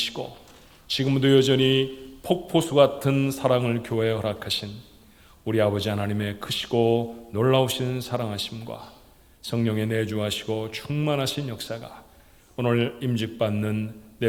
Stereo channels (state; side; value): identical; both; correlation 1.00